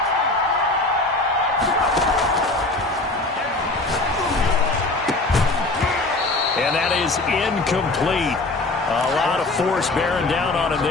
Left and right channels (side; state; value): right; quieter; 3.0 dB